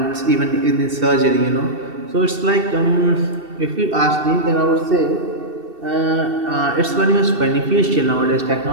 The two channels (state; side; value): late; left; 2.7 ms